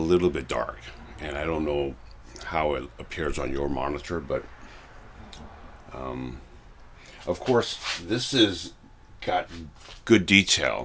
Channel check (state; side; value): identical; both; correlation 1.00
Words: bit dark, and I don't know how it appears on your monitor, but of course this is got good